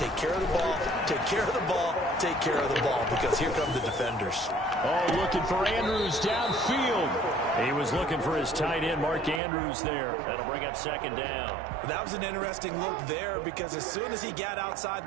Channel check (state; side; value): drops out; left; at 9.4 s